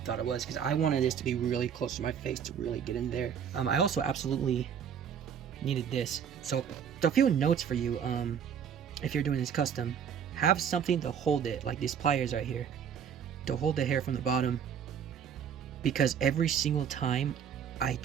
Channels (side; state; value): left; quieter; 7.9 dB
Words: it was, because I wanted this to be really close to my face to really get in there. I also absolutely needed this. So a few notes for you. If you're doing this custom, have something to hold it, like these pliers right here, to hold the hair from the bottom, because every single time I